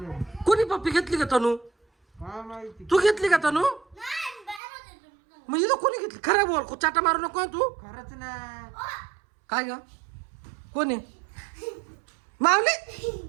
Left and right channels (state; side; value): drops out; left; at 4.6 s